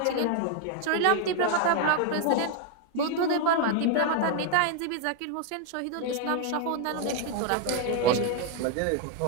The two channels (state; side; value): different; both; correlation 0.00